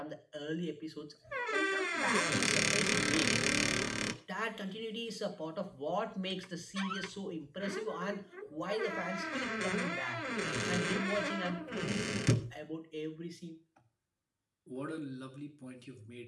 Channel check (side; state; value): both; identical; correlation 1.00